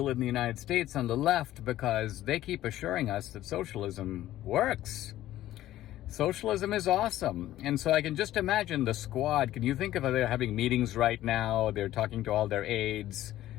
in the United States on the left because they keep assuring us that socialism works. Socialism is awesome. And so I can just imagine the squad. Can you think of they're having meetings right now? They're talking to all their aides,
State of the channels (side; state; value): right; quieter; 14.1 dB